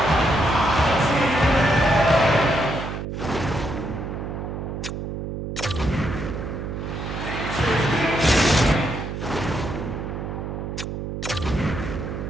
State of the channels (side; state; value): right; noise; hum, 5 dB below the sound